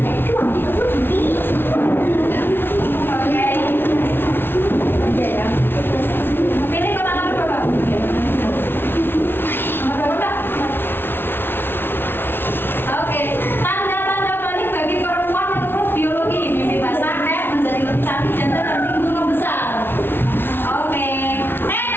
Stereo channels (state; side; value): late; right; 0.11 ms